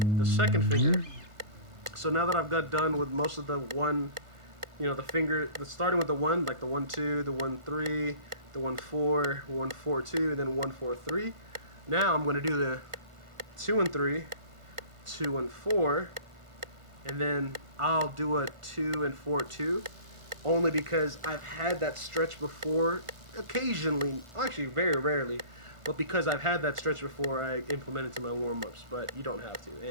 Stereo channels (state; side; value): late; left; 1.5 ms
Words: finger. So now that I've got done with most of the one, you know, starting with the 1, like the 1, 2, the 1, 3, the 1, 4, 1, 4, 2, and then 1, 4, 3. Now I'm going to do the 2 and 3, 2 and 4, and then I'll do a 2 and 4, 2, only because I've had that stretch before, occasionally, actually very rarely, but because I've had that stretch before, I implement it to my warm-ups, but you don't have to,